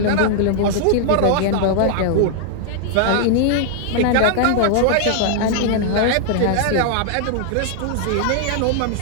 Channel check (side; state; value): both; different; correlation 0.00